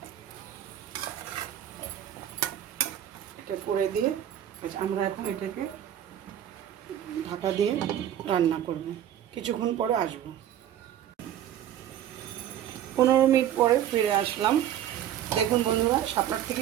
এটা করে দিয়ে আমরা এখন এটাকে ঢাকা দিয়ে রান্না করব। কিছুক্ষণ পরে আসবো। 15 মিনিট পরে ফিরে আসলাম। দেখুন বন্ধুরা, শাপলার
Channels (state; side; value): quieter; left; 11.0 dB